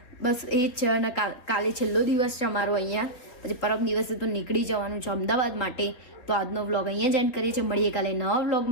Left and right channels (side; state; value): right; late; 4.0 ms